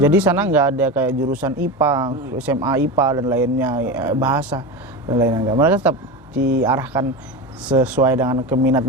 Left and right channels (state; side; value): normal; both; correlation 0.22